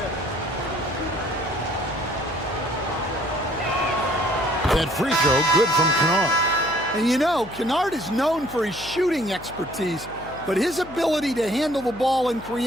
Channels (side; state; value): left; noise; hum, 17 dB below the sound